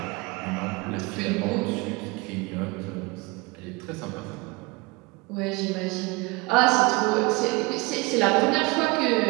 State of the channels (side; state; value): left; quieter; 25.0 dB